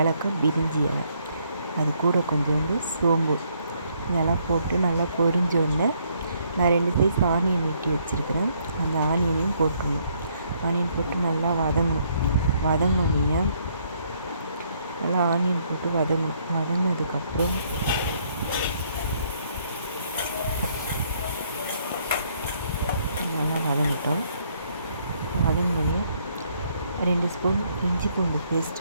பிரிஞ்சி இலை, அது கூட கொஞ்சோண்டு சோம்பு இதெல்லாம் போட்டு நல்லா பொரிஞ்சோடனே நான் 2 சைஸ் ஆனியன் வெட்டி வச்சுருக்கிறேன். அந்த ஆனியனையும் போட்டுருணும். ஆனியன் போட்டு நல்லா வதங்கினோடனே நல்லா ஆனியன் போட்டு வதங்கினதுக்கப்புறம் நல்லா வதங்கிட்டோம். வதங்கினோடனே 2 ஸ்பூன் இஞ்சி பூண்டு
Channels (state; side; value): inverted; both; correlation -0.69